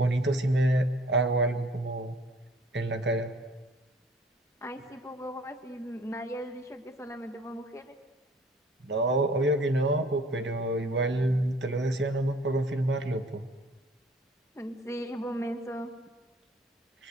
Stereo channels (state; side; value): normal; both; correlation 0.54